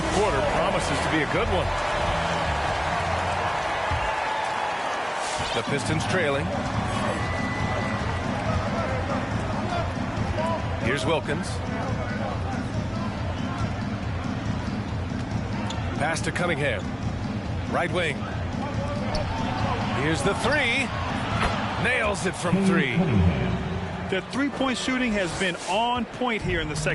quarter promises to be a good one. The Pistons trailing. Here's Wilkins. Pass to Cunningham. Right wing. Here's the 3. Nails it from 3. The three-point shooting has been on point here in the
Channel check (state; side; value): identical; both; correlation 1.00